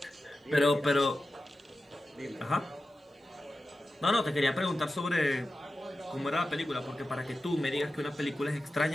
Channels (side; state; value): both; normal; correlation 0.93